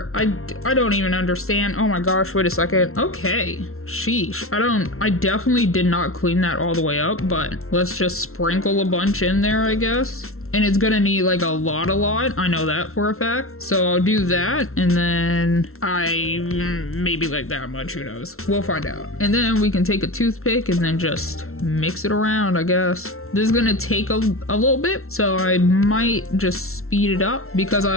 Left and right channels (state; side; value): late; right; 0.62 ms